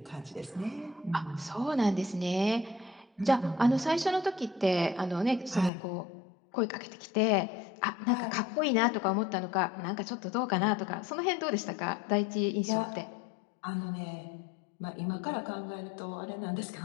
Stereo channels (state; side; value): drops out; right; at 5.7 s